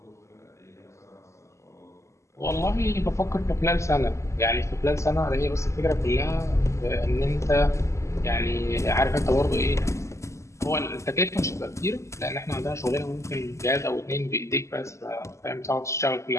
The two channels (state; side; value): late; right; 0.14 ms